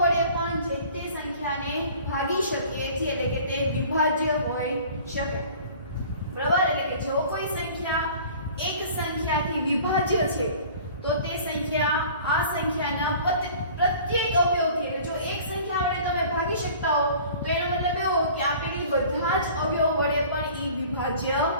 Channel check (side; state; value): both; inverted; correlation -0.46